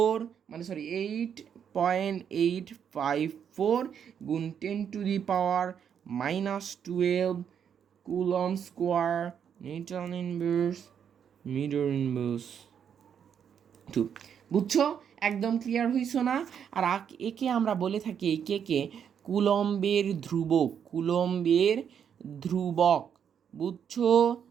গুণ 10⁻⁻12 coulomb square newton inverse metre inverse 2। বুঝছো? একদম ক্লিয়ার হইছো না? আর একে আমরা বলে থাকি, এই কে কুলম্বের ধ্রুবক, কুলম্বের ধ্রুবক। বুঝছো?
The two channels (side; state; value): left; quieter; 8.1 dB